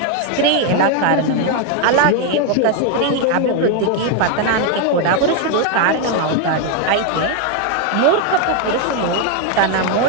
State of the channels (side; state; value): both; different; correlation 0.01